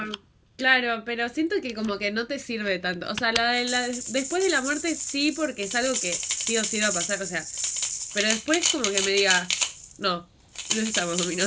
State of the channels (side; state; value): both; identical; correlation 1.00